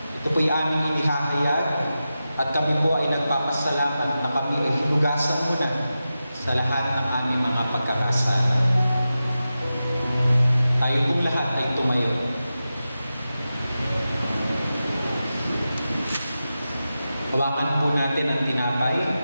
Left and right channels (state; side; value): inverted; both; correlation -0.92